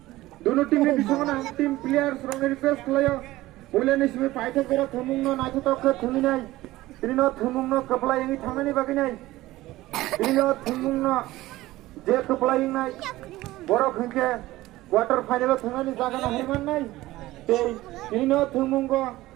दोनों टीम नि बिसिङो ना टीम प्लेयर्स रंग रिक्वेस्ट लायो बोलेनि सिमे फाइट करे थंगमुं न नाथि तो ख थंगि नाय तिनो थंगमुं न कपलायनि थांनानि बागै नाय तिनो थंगमुं न जे कपलायनि नाय बरो खंके क्वार्टर फाइनल थांनानि जागा ना हरमान नाय ते तिनो थंगमुं गो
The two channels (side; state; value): left; quieter; 17.3 dB